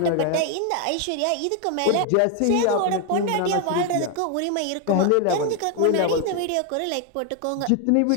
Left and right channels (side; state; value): both; different; correlation 0.01